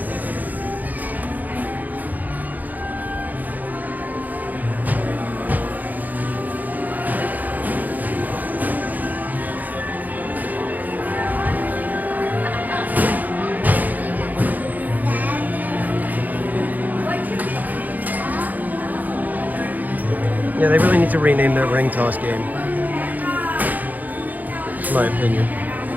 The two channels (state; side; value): late; left; 0.082 ms